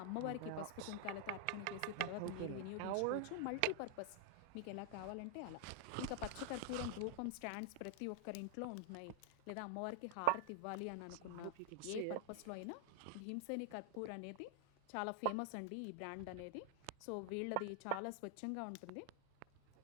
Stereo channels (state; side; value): different; both; correlation 0.00